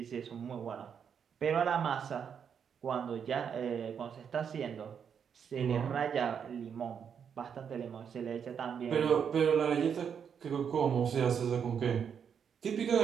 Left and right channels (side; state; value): left; quieter; 7.4 dB